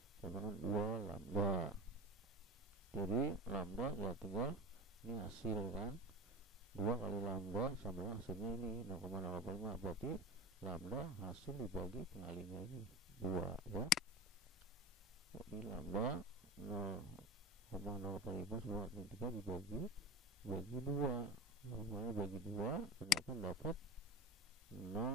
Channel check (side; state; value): both; normal; correlation 0.30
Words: sama dengan 2 lambda. Jadi lambda ya tinggal ini hasil kan, 2 kali lambda sama dengan hasilnya ini 0,085, berarti lambda hasil dibagi pengalinya ini 2 ya. Jadi lambda 0,085 10 min 3 dibagi 2, normalnya bagi 2 ternyata dapat